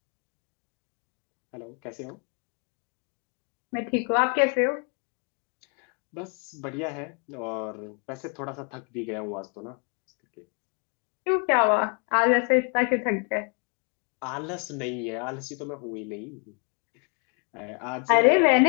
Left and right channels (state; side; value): quieter; right; 39.3 dB